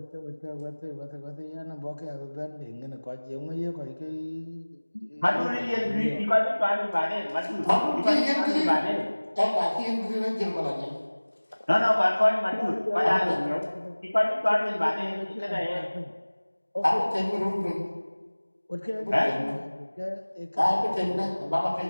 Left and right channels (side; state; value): both; inverted; correlation -1.00